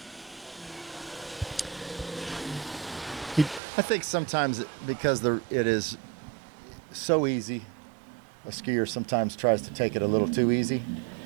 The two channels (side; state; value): left; drops out; at 3.6 s